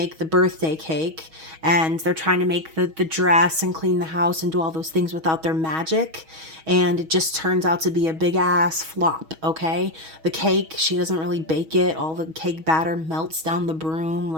the birthday cake, and they're trying to make the dress and clean the house and do all those things without their magic, and it just turns out to be a big ass flop. Okay, the cake, she doesn't really bake it, all the cake batter melts down the broom.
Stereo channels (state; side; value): late; left; 6.3 ms